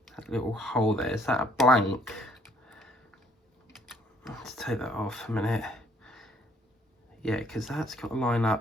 little hole there. Is that a blank? Let's take that off a minute. Yeah, because that's got to line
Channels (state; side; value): normal; both; correlation 0.64